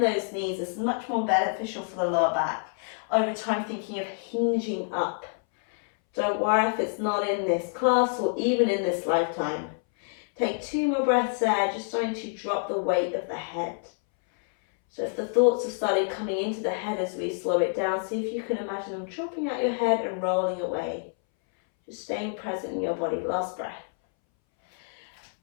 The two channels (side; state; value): right; silent; 60 dB below the other